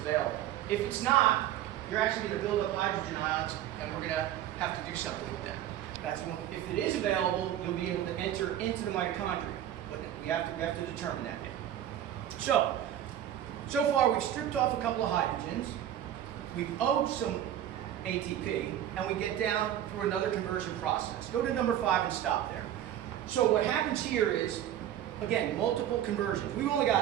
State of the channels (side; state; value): left; quieter; 11.5 dB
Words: If it's not, you're actually going to build up hydrogen ions, and we're going to have to do something with them. That's when, if it is available, you'll be able to enter into the mitochondria. But we have to determine that. So far we've stripped off a couple of hydrogens. We've owed some ATP, and we get down through another conversion process. Go to number 5 and stop there. So what happens here is, again, multiple conversions. We've only